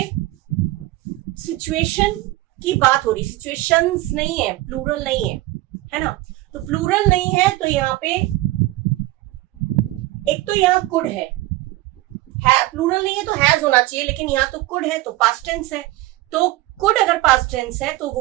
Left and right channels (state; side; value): quieter; left; 18.1 dB